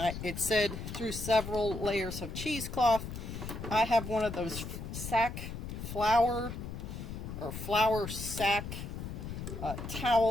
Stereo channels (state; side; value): noise; left; rumble, 7 dB below the sound